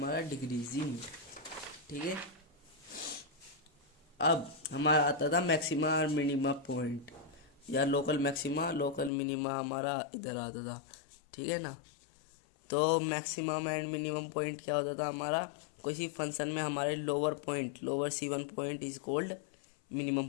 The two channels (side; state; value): right; drops out; at 9.1 s